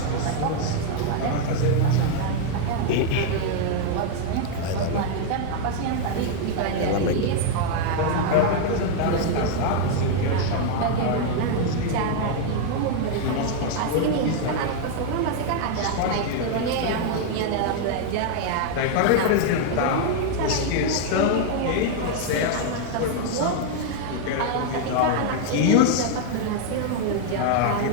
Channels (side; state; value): both; different; correlation 0.00